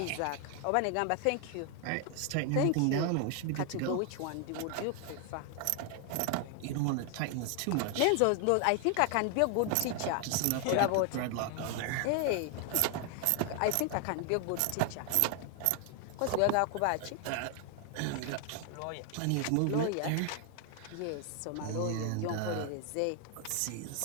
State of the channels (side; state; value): both; different; correlation 0.00